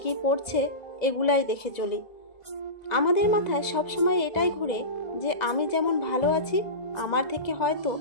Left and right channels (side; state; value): right; late; 2.0 ms